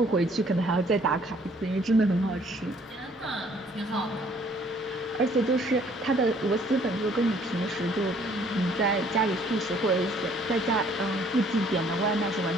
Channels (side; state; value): both; normal; correlation 0.60